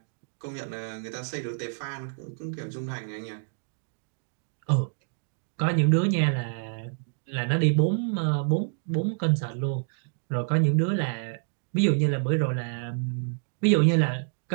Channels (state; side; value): silent; left; digital silence